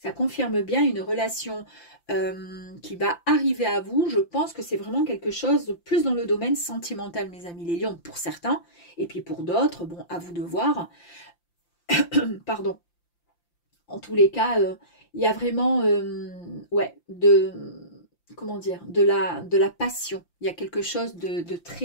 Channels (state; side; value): late; right; 5.8 ms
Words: Ça confirme bien une relation qui va arriver à vous. Je pense que c'est vraiment quelque chose de plus dans le domaine sentimental, mes amis les lions, pour certains. Et puis pour d'autres, bon, à vous de voir. Pardon. En tous les cas, il y a vraiment, ouais, comment dire, de la passion. Il y a quelque chose de